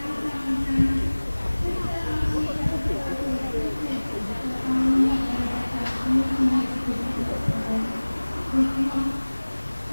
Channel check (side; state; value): both; inverted; correlation -1.00